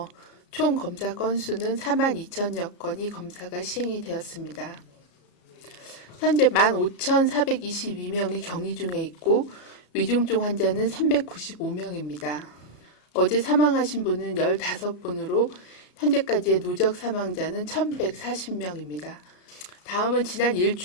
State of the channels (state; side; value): late; right; 33 ms